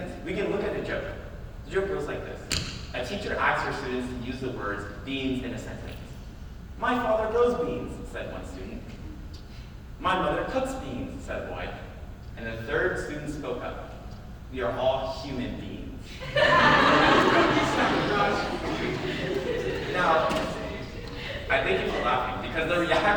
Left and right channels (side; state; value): both; identical; correlation 1.00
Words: we can look at a joke. The joke goes like this. A teacher asks her students to use the words beans in a sentence. "My father grows beans," said one student. "My mother cooks beans," said a boy. And the third student spoke up. "We are all human beings." Now, I thank you for laughing, because the